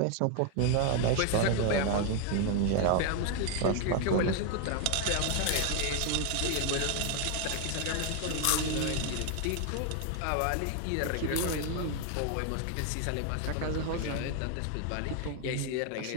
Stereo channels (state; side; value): different; both; correlation 0.00